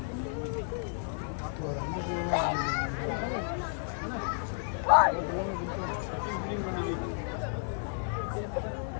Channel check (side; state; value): right; silent; digital silence